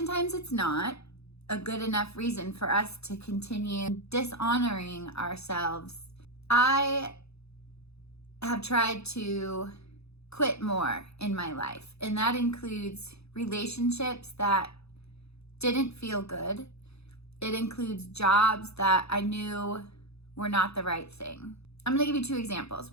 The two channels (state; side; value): late; right; 0.79 ms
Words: it's not a good enough reason for us to continue dishonoring ourselves. I have tried to quit more in my life, and that includes relationships that didn't feel good. It includes jobs that I knew were not the right thing. I'm going to give you two examples.